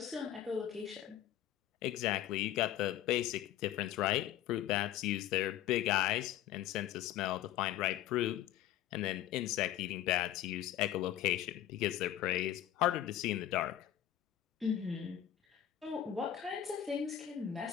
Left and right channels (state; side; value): quieter; right; 11.8 dB